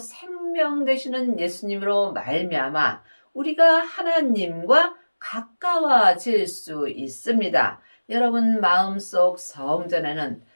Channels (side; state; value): both; inverted; correlation -1.00